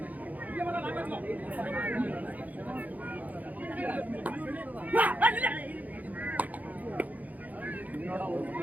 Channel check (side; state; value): left; late; 0.078 ms